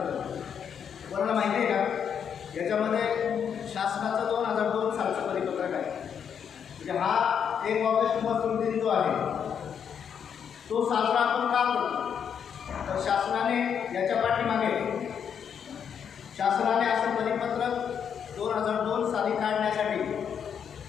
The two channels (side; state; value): right; quieter; 7.7 dB